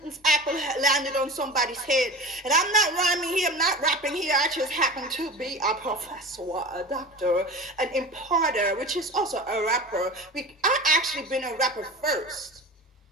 apple landed on somebody's head? And I'm not rhyming here, I'm not rapping here. I just happen to be a professor, a doctor, an imparter, which is also a rapper. I actually been a rapper first.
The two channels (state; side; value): normal; both; correlation 0.33